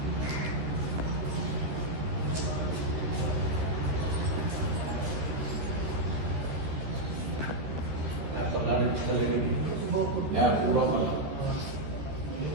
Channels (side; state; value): left; late; 13 ms